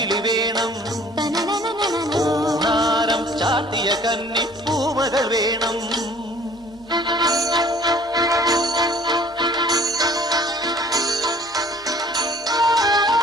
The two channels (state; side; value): noise; right; hum, 28 dB below the sound